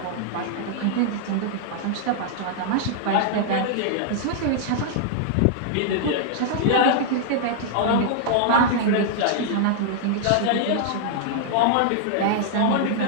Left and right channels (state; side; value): different; both; correlation -0.01